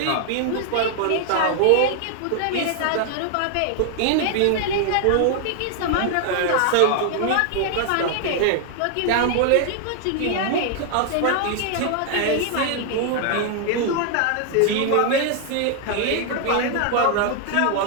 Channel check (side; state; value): both; different; correlation 0.00